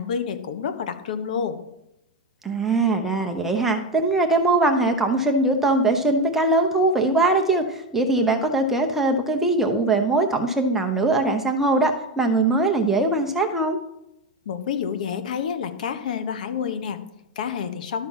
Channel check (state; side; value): normal; both; correlation 0.16